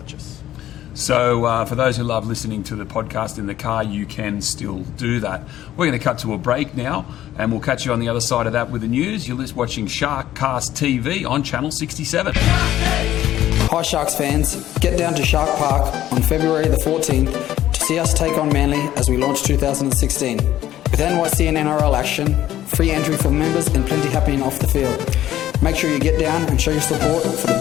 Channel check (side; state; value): right; quieter; 13.0 dB